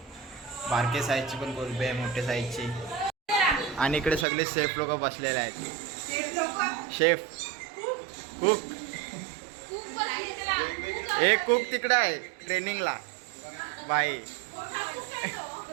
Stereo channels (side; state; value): left; drops out; at 4.2 s